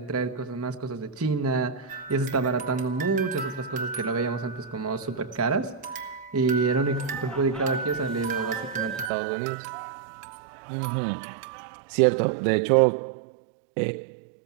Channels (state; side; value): drops out; left; at 9.1 s